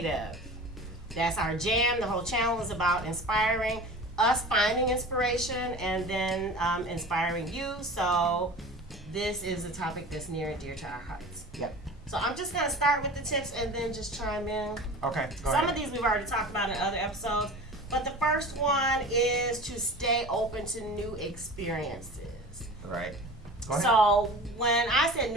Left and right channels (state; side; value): normal; both; correlation 0.37